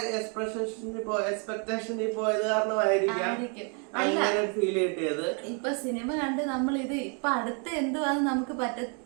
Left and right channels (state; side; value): quieter; left; 38.1 dB